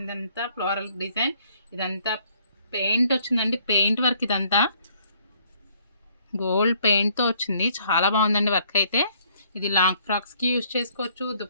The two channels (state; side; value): inverted; both; correlation -0.63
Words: అంతా ఫ్లోరల్ డిజైన్. ఇదంతా పెయింట్ వచ్చిందండి, పెయింట్ వర్క్. ఇదంతా గోల్డ్ పెయింట్తో వచ్చింది. చాలా బాగుందండి వర్క్ అయితే. ఇది లాంగ్ ఫ్రాక్స్కి యూజ్ చేసుకోవచ్చు,